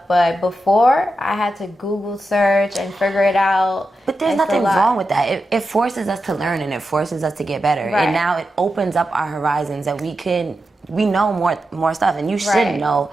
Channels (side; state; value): both; normal; correlation 0.89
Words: but before I had to Google search and figure it out. But there's nothing wrong with that. It forces us to learn, and it forces us to get better. And now it opens up our horizons that we know more stuff, and you should know